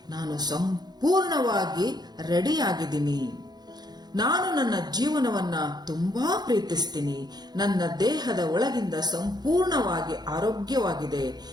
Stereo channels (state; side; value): late; left; 0.20 ms